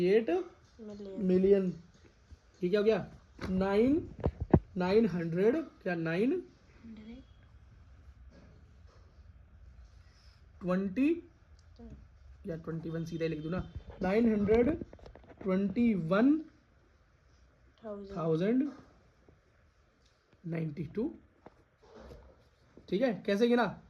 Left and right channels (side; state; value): both; identical; correlation 1.00